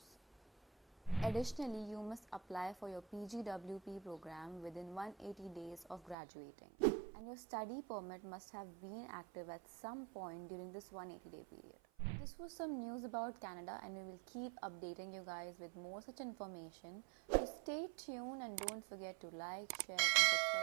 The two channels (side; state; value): left; drops out; at 6.2 s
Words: Additionally, you must apply for your PGWP program within 180 days of graduating, and your study permit must have been active at some point during this 180-day period. This was some news about Canada, and we will keep updating you guys with more such information. So stay tuned and don't forget to like, share and